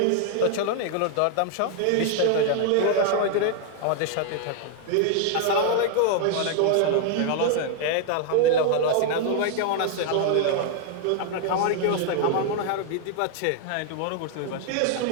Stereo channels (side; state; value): both; different; correlation 0.00